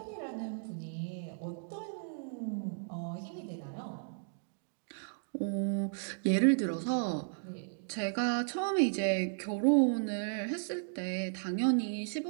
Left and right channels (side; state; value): left; silent; digital silence